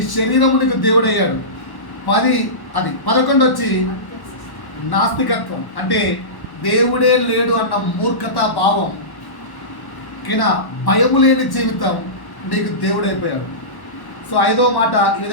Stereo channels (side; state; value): right; late; 1.1 ms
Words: శరీరము నీకు దేవుడయ్యాడు. 11 వచ్చి నాస్తికత్వం, అంటే దేవుడే లేడు అన్న మూర్ఖతా భావం. ఓకేనా? భయము లేని జీవితం నీకు దేవుడైపోయాడు. సో 5వ మాట ఈ